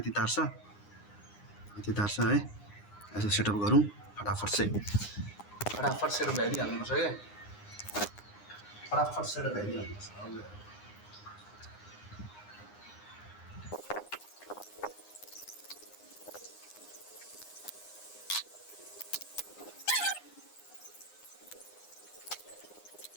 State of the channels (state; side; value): late; right; 9.7 ms